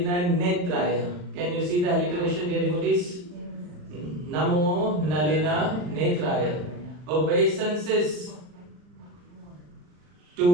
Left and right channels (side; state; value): left; late; 40 ms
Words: Netraya. Can you see the alliteration, dear devotees? Namo Nalina Netraya. Obeisances